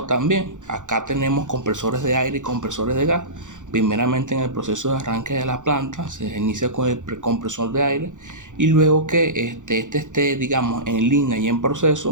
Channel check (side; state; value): left; late; 0.86 ms